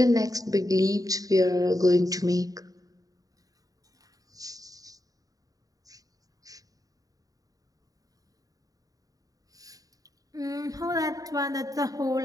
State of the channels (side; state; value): left; late; 0.17 ms